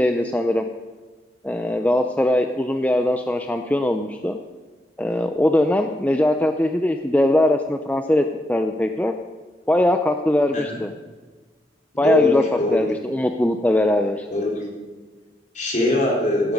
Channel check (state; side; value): normal; both; correlation 0.80